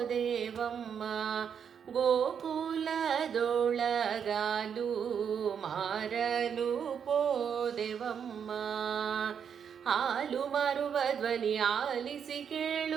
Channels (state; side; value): quieter; left; 7.5 dB